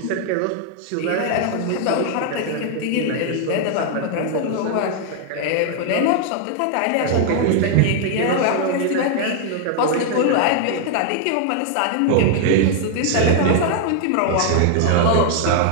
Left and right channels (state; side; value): different; both; correlation 0.00